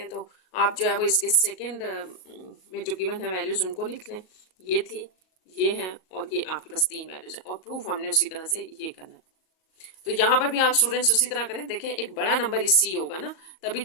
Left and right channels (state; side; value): late; right; 38 ms